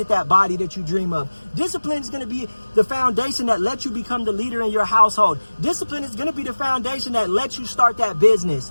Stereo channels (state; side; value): inverted; both; correlation -1.00